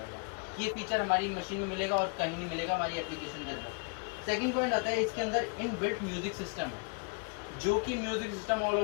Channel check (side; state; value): right; quieter; 38.1 dB